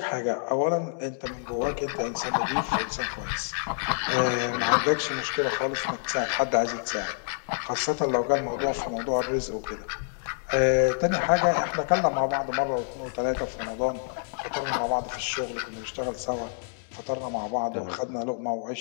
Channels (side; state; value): right; silent; digital silence